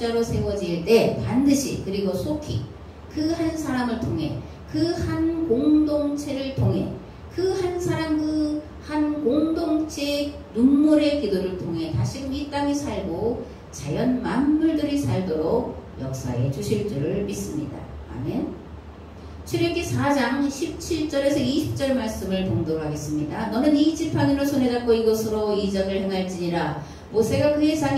세워질 때 반드시, 그리고 속히 그 한 사람을 통해, 그 한 공동체를 통해, 그 한 사람, 그 한 공동체의 눈물의 기도를 통해 다시금 이 땅이 살고 자연 만물들이 살도록 역사해 주실 줄을 믿습니다. 아멘. 출애굽기 4장 17절에서 20절 말씀을 봉독하겠습니다. 너는 이 지팡이를 손에 잡고 이곳으로 이적을 행할지니라. 모세가 그의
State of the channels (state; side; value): identical; both; correlation 1.00